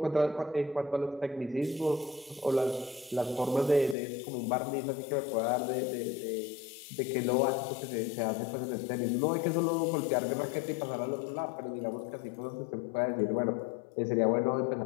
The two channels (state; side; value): drops out; right; at 4.0 s